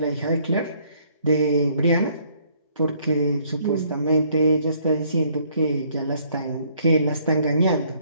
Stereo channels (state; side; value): inverted; both; correlation -0.65